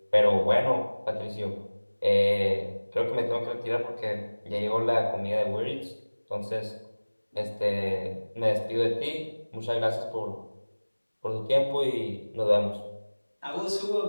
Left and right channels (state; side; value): inverted; both; correlation -1.00